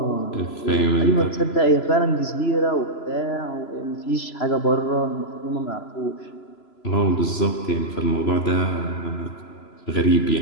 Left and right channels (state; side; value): late; right; 3.0 ms